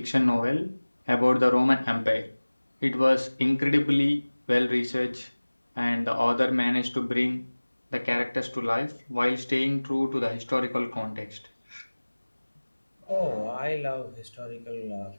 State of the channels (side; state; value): both; inverted; correlation -1.00